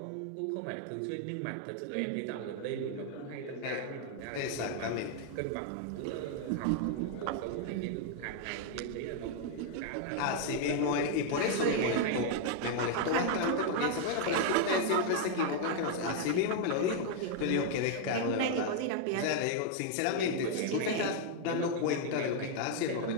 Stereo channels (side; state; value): both; different; correlation 0.00